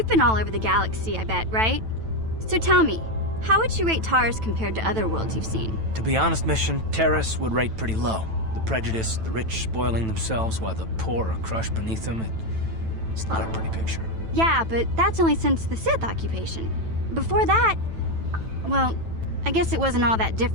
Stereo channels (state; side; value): late; left; 9.1 ms